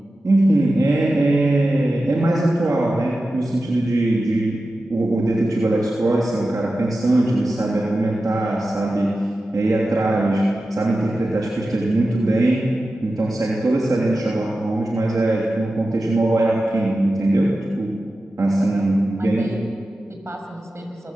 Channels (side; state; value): both; normal; correlation 0.93